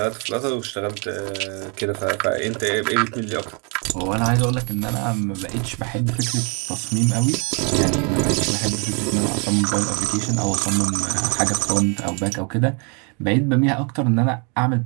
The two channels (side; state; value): left; quieter; 35.6 dB